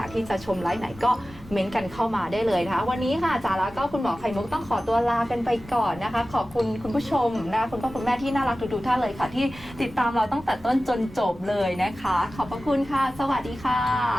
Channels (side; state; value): both; normal; correlation 0.96